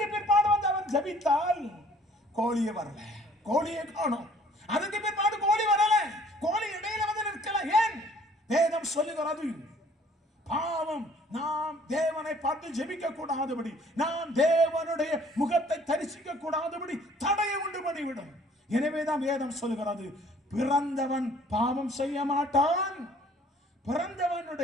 பிற்பாடு வந்து அவன் ஜெபித்தால் கோழியை வரல, கோழியை காணோம். அதுக்கு பிற்பாடு கோழி வரல, கோழி இடையில வந்து நிற்கல. ஏன்? வேதம் சொல்லுகிறது, பாவம் நாம் தேவனை பார்த்து ஜெபிக்க கூடாதபடி, நாம் தேவனுடைய முகத்தை தரிசிக்க கூடாதபடி தடையை உண்டு பண்ணிவிடும். எனவேதான் வேதம் சொல்லுகிறது, பிறந்தவன் பாவம் செய்ய மாட்டான்,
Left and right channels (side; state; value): both; normal; correlation 0.56